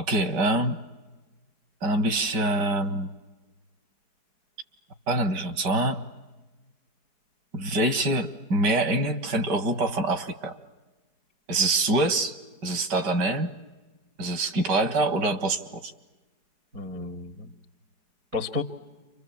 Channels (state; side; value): late; left; 5.1 ms